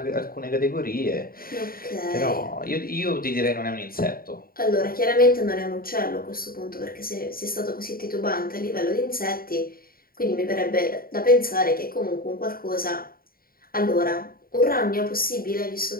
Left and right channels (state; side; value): late; right; 0.43 ms